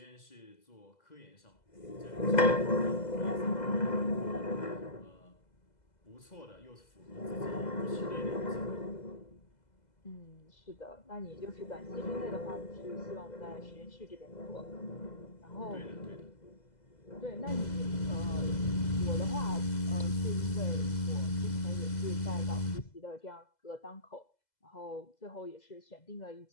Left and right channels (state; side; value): late; right; 2.0 ms